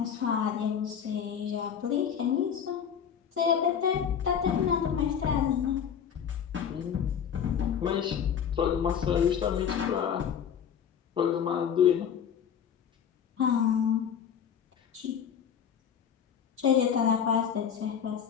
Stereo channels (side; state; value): right; quieter; 8.0 dB